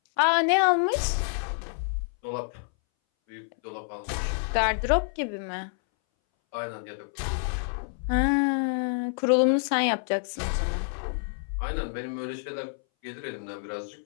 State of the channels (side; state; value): right; silent; 59 dB below the other